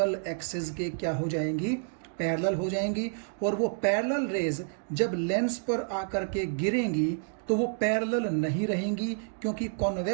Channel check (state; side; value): silent; left; digital silence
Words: एक्सिस के क्या हो जाएंगी, पैरेलल हो जाएंगी। और वो पैरेलल रेज जब लेंस पर आकर के गिरेंगी तो वो पैरेलल नहीं रहेंगी, क्योंकि